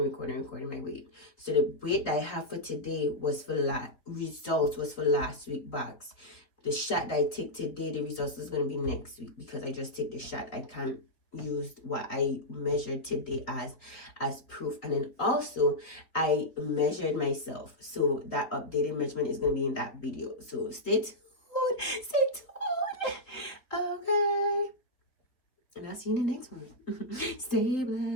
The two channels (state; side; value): late; right; 4.0 ms